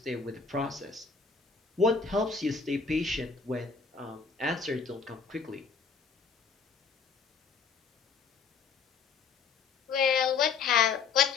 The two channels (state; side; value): quieter; right; 5.3 dB